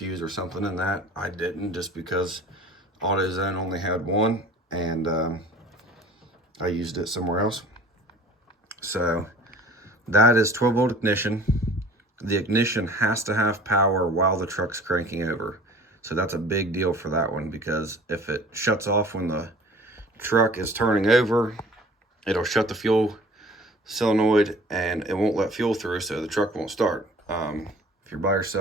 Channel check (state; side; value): normal; both; correlation 0.46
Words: or something in that. I didn't, just because AutoZone only had one, and I used it somewhere else. So that is 12-volt ignition. The ignition has to have power while the truck's cranking over. So that's a big deal for that one, because if it shuts off when the truck is turning over, it'll shut the fuel solenoid and it won't let fuel through, so the truck won't start. If you're by